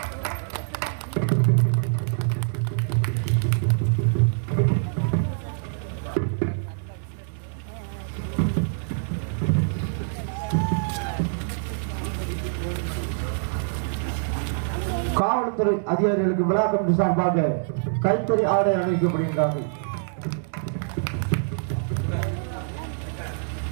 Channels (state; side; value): silent; left; digital silence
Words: காவல்துறை அதிகாரிகளுக்கு விழா கமிட்டி சார்பாக கைத்தறி ஆடை அணிவிக்கப்படுகின்றார்கள்.